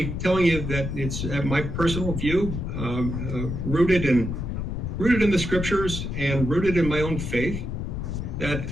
telling you that it's my personal view, rooted in the scriptures and rooted in my own faith, that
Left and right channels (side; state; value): left; noise; rumble, 4 dB below the sound